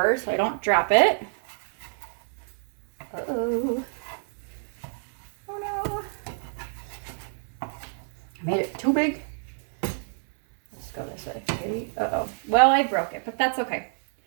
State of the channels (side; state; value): left; silent; digital silence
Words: so I don't drop it. Uh-oh. Oh no. I made it too big. Go this way. Ready? Uh-oh. Well, I broke it, but that's okay.